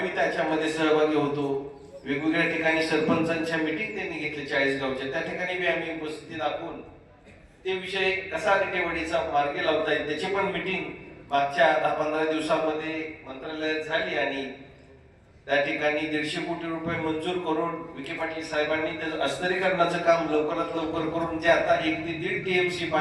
त्याच्यामध्ये सहभागी होतो. वेगवेगळ्या ठिकाणी सरपंचांच्या मीटिंग त्यांनी घेतल्या 40 गावच्या, त्या ठिकाणी बी आम्ही उपस्थिती दाखवून ते विषय कसा रिटेवाडीचा मार्गी लावता येईल त्याची पण मीटिंग मागच्या 10-15 दिवसामध्ये मंत्रालयात झाली आणि त्या ठिकाणी 150 कोटी रुपये मंजूर करून विखे पाटील साहेबांनी त्याचं अस्तरीकरणाचं काम लवकरात लवकर करून जे आता 1 ते 1.5 TMC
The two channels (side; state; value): both; identical; correlation 1.00